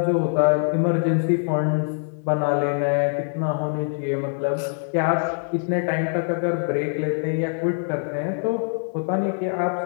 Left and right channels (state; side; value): silent; right; digital silence